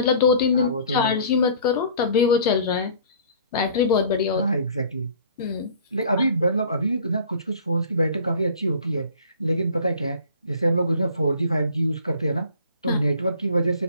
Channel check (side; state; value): both; inverted; correlation -0.49